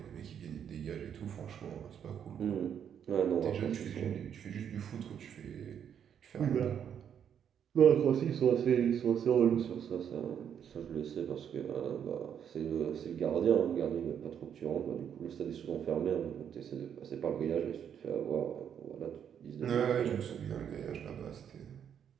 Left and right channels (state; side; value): quieter; left; 8.5 dB